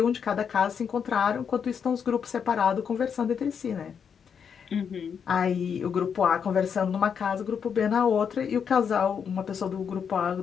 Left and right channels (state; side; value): quieter; right; 7.1 dB